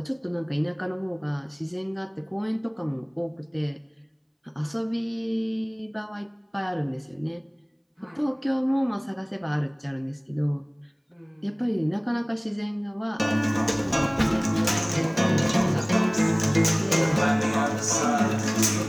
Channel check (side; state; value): both; identical; correlation 1.00